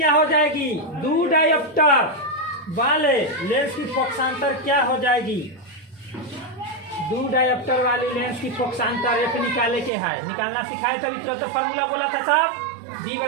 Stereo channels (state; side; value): drops out; left; at 9.9 s